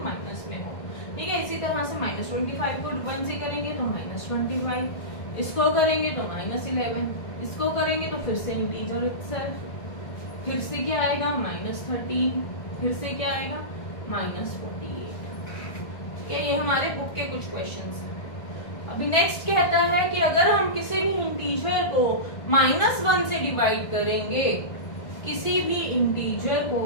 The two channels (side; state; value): right; late; 1.6 ms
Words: माइनस में हो। ठीक है, इसी तरह से -25 को 1 से करेंगे तो -25, इसको करेंगे तो -11, इसको करेंगे तो फिर से इंटीजर इटसेल्फ, फिर से क्या आएगा -13, फिर से क्या आएगा -48। ठीक है, ये हमारे बुक के कुछ क्वेश्चंस हैं। अभी नेक्स्ट कहता है कि अगर हम किसी भी इंटीजर को -1 से डिवाइड करेंगे, किसी भी इंटीजर को